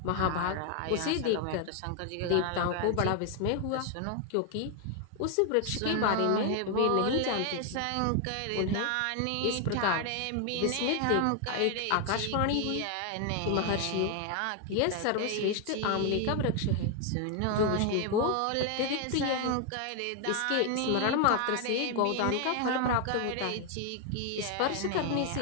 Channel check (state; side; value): different; both; correlation 0.00